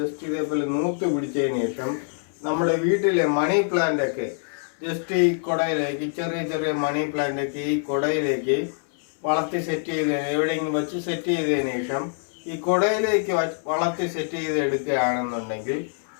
ഇതേപോലെ നൂത്ത് പിടിച്ചതിന് ശേഷം നമ്മുടെ വീട്ടിലെ മണി പ്ലാന്റ് ഒക്കെ ജസ്റ്റ് ഈ കുടയിലേക്ക് ചെറിയ ചെറിയ മണി പ്ലാന്റ് ഒക്കെ ഈ കുടയിലേക്ക് വളർത്തി സെറ്റ് ചെയ്ത് എവിടെയെങ്കിലും വെച്ച് സെറ്റ് ചെയ്തതിന് ശേഷം ഈ കുടയിലേക്ക് വളർത്തി സെറ്റ് ചെയ്ത് എടുക്കുകയാണെന്നുണ്ടെങ്കിൽ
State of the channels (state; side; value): silent; right; 62 dB below the other